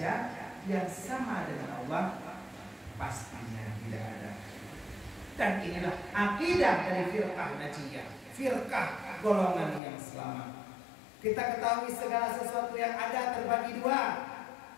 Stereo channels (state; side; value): drops out; right; at 9.8 s